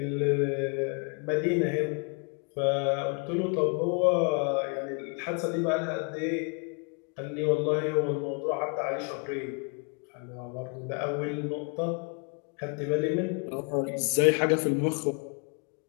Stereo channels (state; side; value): quieter; right; 36.9 dB